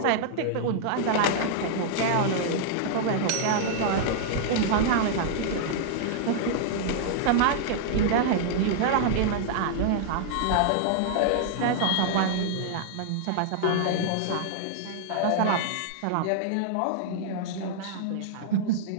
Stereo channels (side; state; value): both; different; correlation -0.01